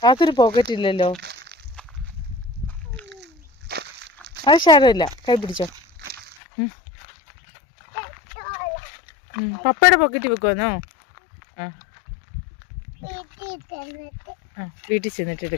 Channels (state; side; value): drops out; right; at 6.4 s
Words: അതൊരു പോക്കറ്റ് ഇല്ലല്ലോ. അത് സാരമില്ല, കൈ പിടിച്ചോ. പപ്പയുടെ പോക്കറ്റ് വെക്കുവാന്നോ? വീട്ടിൽ ചെന്നിട്ട്